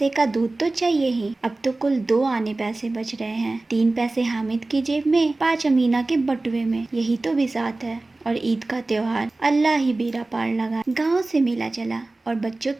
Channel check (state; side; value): quieter; left; 3.0 dB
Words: का दूध तो चाहिए ही। अब तो कुल 2 आने पैसे बच रहे हैं। 3 पैसे हामिद की जेब में, 5 अमीना के बटुए में। यही तो बिसात है। और ईद का त्योहार अल्लाह ही बेड़ा पार लगा। गाँव से मेला चला और बच्चों